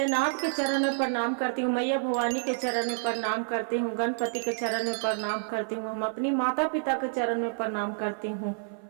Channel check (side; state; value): left; silent; 55 dB below the other